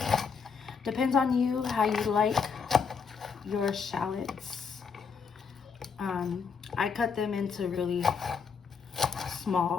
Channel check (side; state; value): right; quieter; 5.7 dB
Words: Depends on you how you like your shallots. I cut them into really